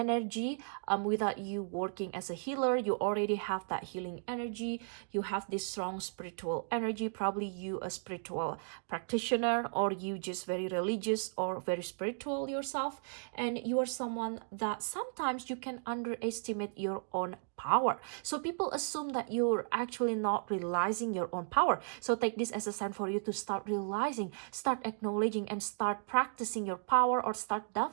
Without you working as a healer, you already have that healing energy. You have this strong spiritual energy. Probably you a spiritual practitioner, or you just very religious or very spiritual yourself, and you are someone that sometimes you can underestimate your own power. So people assume that you're actually not realizing your own power. So take this as a sign for you to start realizing, start acknowledging, and start practicing your power, or start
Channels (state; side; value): silent; left; digital silence